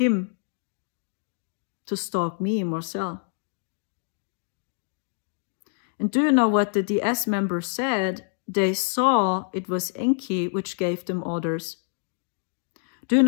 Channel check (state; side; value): silent; right; 61 dB below the other